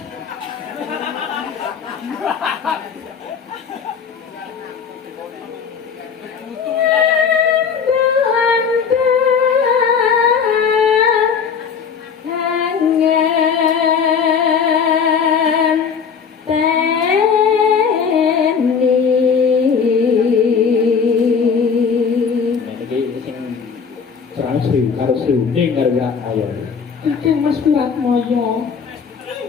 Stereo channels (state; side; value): quieter; right; 6.4 dB